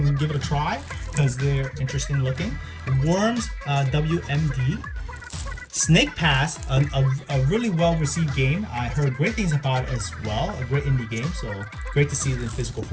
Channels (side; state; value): both; identical; correlation 1.00